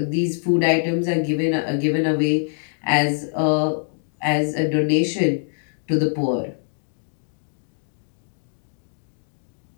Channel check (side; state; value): right; silent; 59 dB below the other